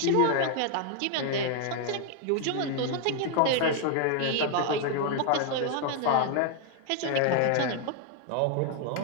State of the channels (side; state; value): both; different; correlation 0.00